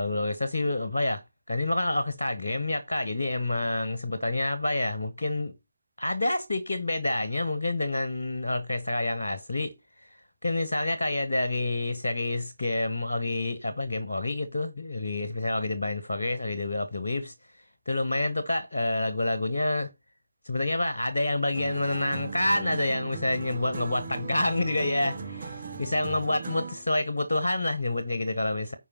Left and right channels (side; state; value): both; inverted; correlation -0.91